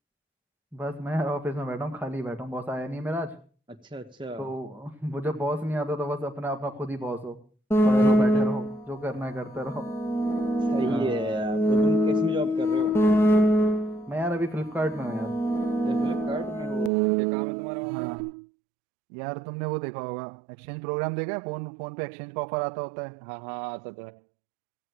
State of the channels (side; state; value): left; drops out; at 16.9 s